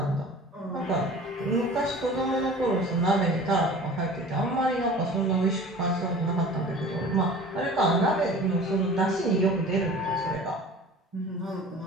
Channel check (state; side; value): normal; both; correlation 0.42